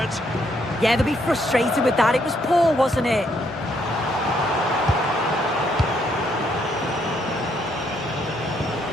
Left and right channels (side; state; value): both; normal; correlation 0.72